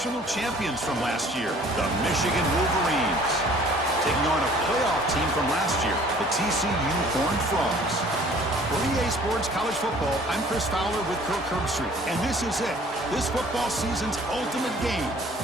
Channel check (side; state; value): both; normal; correlation 0.53